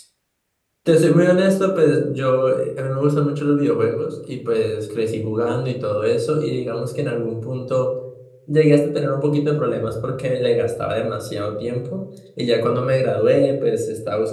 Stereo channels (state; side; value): identical; both; correlation 1.00